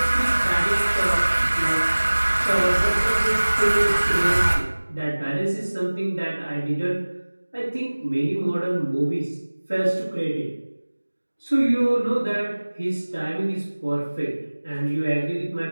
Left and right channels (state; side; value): inverted; both; correlation -1.00